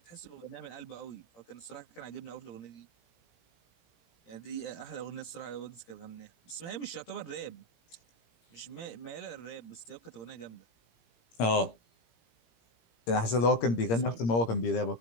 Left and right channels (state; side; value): late; right; 17 ms